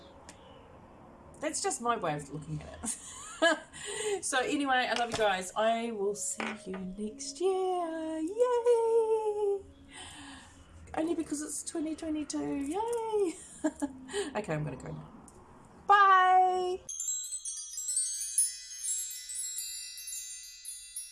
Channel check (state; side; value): identical; both; correlation 1.00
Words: That's just my way of looking at it. So anyway, I love you guys. I will see you next year. Yay! Only because it's 2022. Yay! Okay, I'm going to go now. Bye!